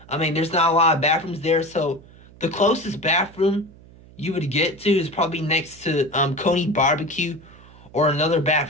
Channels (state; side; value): noise; right; hum, 23 dB below the sound